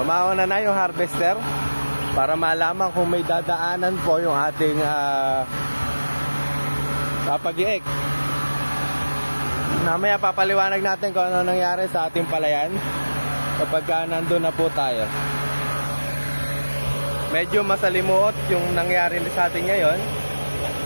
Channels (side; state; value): both; inverted; correlation -1.00